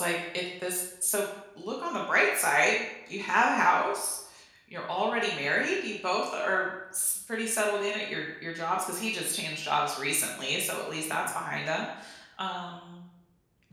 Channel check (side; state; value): both; identical; correlation 1.00